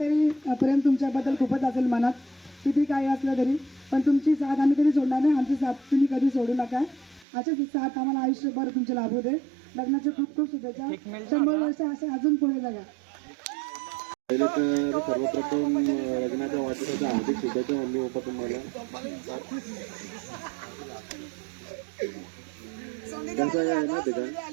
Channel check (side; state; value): left; drops out; at 7.2 s